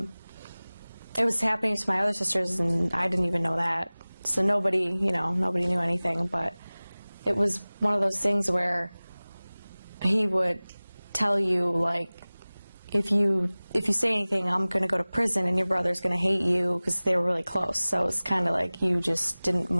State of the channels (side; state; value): both; inverted; correlation -0.99